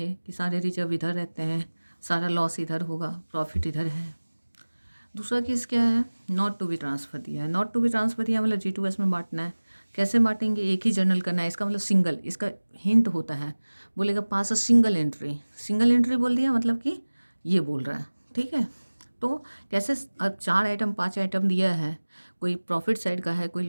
कि सारे रिजर्व इधर रहते हैं, सारा लॉस इधर होगा, प्रॉफिट इधर है। दूसरा केस क्या है, नॉट टू बी ट्रांसफ़र दिया है। नॉट टू बी ट्रांसफ़र दिया मतलब G2S में बांटना है। कैसे बांटेंगे, एक ही जर्नल करना है, इसका मतलब सिंगल, इसका हिंट होता है, बोलेगा पास अ सिंगल एंट्री बोल दिया मतलब कि ये बोल रहा है, ठीक है। तो कैसे, अब 4 आइटम 5 आइटम दिया है, कोई प्रॉफिट साइड का है, कोई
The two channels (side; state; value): both; inverted; correlation -1.00